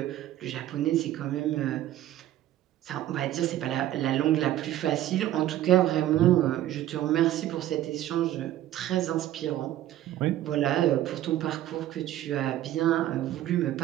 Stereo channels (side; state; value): left; quieter; 13.3 dB